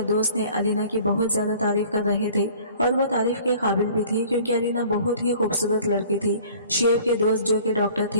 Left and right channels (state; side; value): inverted; both; correlation -0.50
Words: दोस्त ने अलीना की बहुत ज्यादा तारीफ कर रहे थे और वो तारीफ के काबिल भी थी क्योंकि अलीना बहुत ही खूबसूरत लड़की थी। शुएब के दोस्त जो कि डॉक्टर